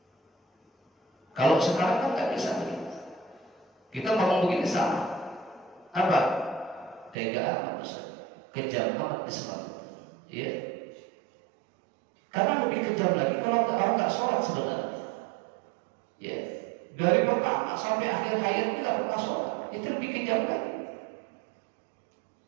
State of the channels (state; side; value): drops out; left; at 7.2 s